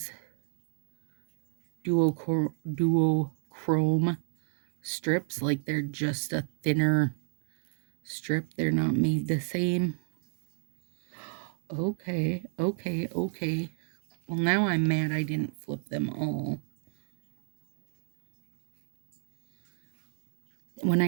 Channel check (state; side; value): silent; left; digital silence